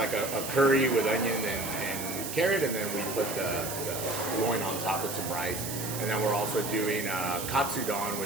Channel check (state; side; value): noise; right; hiss, 6 dB below the sound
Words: a curry with onion and carrot, and then we put the loin on top with some rice. And then we're also doing katsudon,